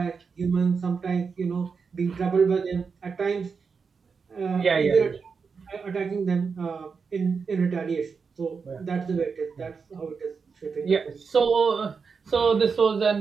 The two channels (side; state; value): left; quieter; 5.4 dB